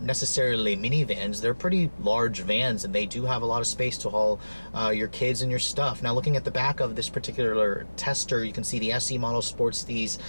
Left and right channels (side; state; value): both; inverted; correlation -1.00